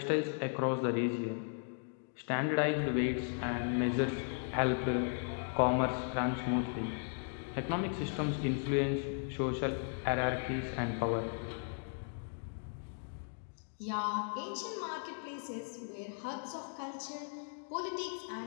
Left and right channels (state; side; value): silent; right; digital silence